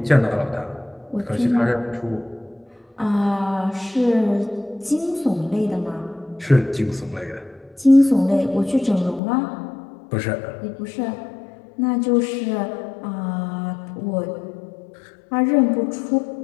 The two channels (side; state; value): right; drops out; at 9.2 s